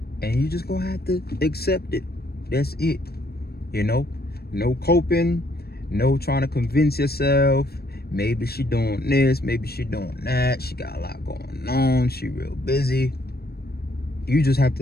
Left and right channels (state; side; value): late; right; 0.46 ms